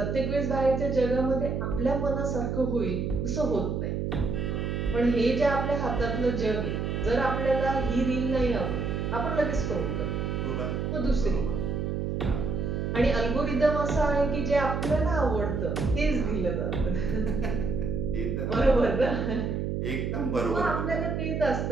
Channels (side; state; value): right; noise; hum, 1 dB below the sound